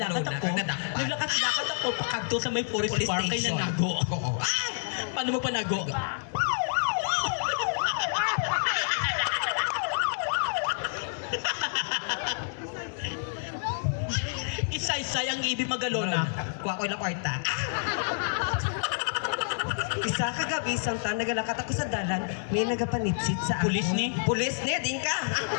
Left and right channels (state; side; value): silent; right; digital silence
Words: Naglakad-lakad ako pakadto sa may forest park kay nanago. Oo. Paano mo panago? Isa-isa ang ibig magalona. Kuha ko ilang kwarta. Isa kagabi, santa, nagalakat ako sa dalan, may nagapanitsit sa ako. Pulis ni? Pulis ni, din ka.